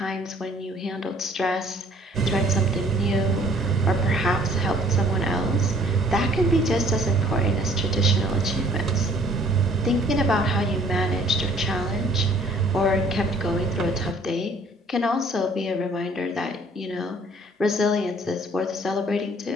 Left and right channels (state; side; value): normal; both; correlation 0.57